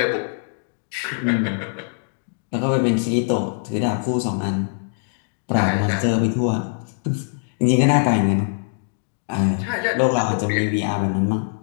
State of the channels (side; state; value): right; silent; digital silence